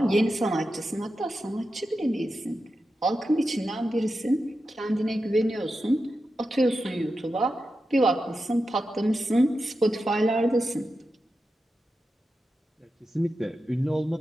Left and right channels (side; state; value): both; normal; correlation 0.90